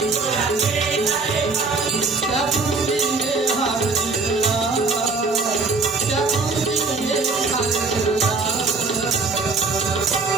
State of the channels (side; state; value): left; quieter; 4.1 dB